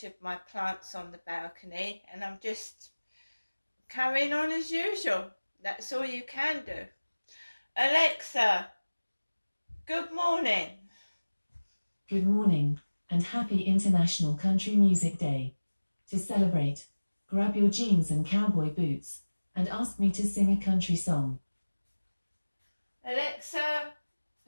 my plants on the balcony and I'm just carrying on as usual. That's all you can do. Alexa, good morning. Good morning, and happy International Country Music Day. To celebrate, grab your jeans and cowboy boots, and ask me to sing a country song. Alexa,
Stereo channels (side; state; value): both; inverted; correlation -1.00